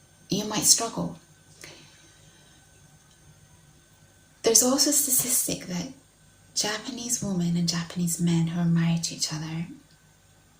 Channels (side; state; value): both; identical; correlation 1.00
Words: you might struggle. There's also a statistic that Japanese women and Japanese men who are married to each other